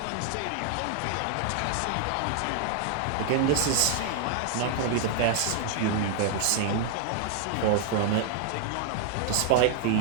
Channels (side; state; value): both; different; correlation -0.01